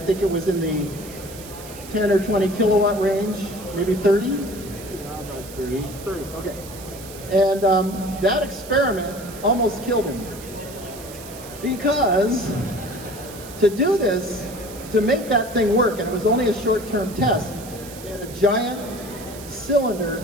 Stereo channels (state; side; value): noise; right; hiss, 16 dB below the sound